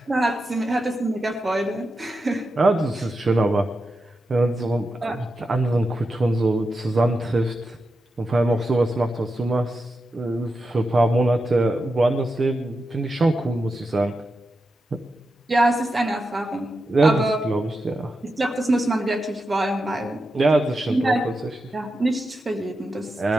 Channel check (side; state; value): both; normal; correlation 0.89